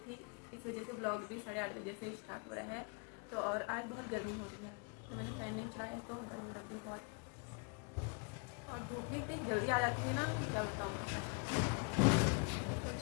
थी, इस वजह से ब्लॉग भी 8:30 बजे से स्टार्ट हो रहा है। तो और आज बहुत गर्मी हो रही है, तो मैंने फैन नहीं चलाया तो गर्मी लग रही बहुत, और धूप भी इतनी जल्दी आ जाती है ना, क्या बताऊँ। तो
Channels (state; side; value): quieter; right; 35.9 dB